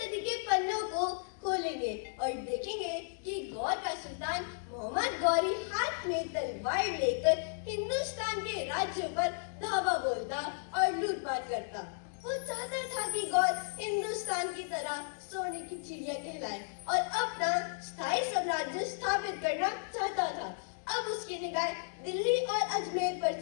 के पन्नों को खोलेंगे और देखेंगे कि गौर का सुल्तान मोहम्मद गौरी हाथ में तलवार लेकर हिंदुस्तान के राज्यों पर धावा बोलता और लूटपाट करता। वो चाहता था कि गौर हिंदुस्तान की तरह सोने की चिड़िया कहलाए और अपना स्थायी साम्राज्य स्थापित करना चाहता था। अब उसकी निगाह दिल्ली और अजमेर पर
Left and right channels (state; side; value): silent; right; digital silence